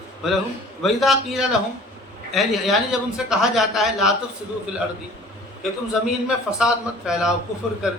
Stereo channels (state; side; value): normal; both; correlation 0.48